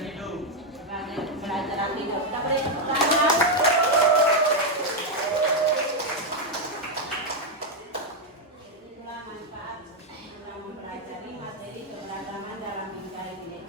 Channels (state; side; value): normal; both; correlation 0.02